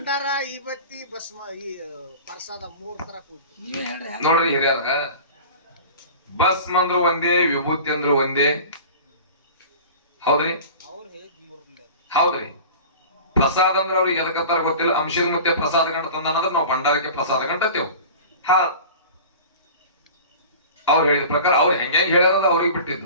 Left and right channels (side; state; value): both; inverted; correlation -0.38